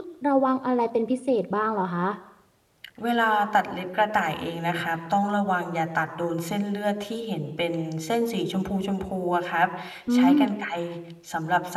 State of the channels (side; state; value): both; identical; correlation 1.00